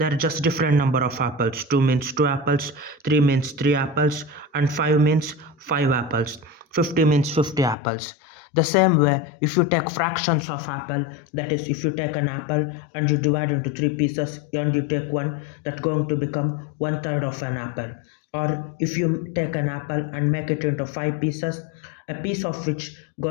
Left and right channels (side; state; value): right; drops out; at 7.8 s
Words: just different number of apples. 2 means 2 apples, 3 means 3 apples and 5 means 5 apples. 50 means 50 apples. The same way, if you take fractions of apple, that is, if you take an apple and you divide into 3 pieces and you take one, that's going to become 1/3 of an apple. Or if you take an apple and make it into 5 pieces, a piece of which